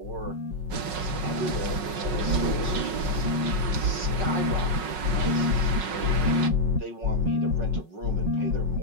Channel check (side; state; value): left; late; 5.4 ms